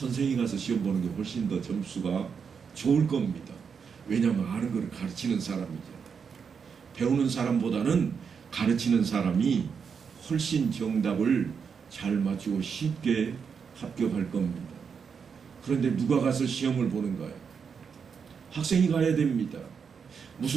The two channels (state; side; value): quieter; left; 6.3 dB